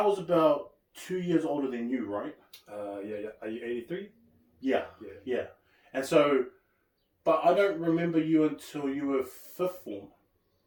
was about 2 years older than you, right? Yeah. Are you 83? Yeah. And so... But I don't remember you until you were 5th form.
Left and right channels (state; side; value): identical; both; correlation 1.00